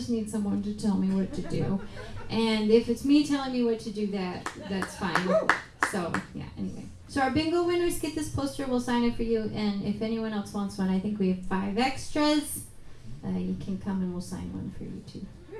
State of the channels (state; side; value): identical; both; correlation 1.00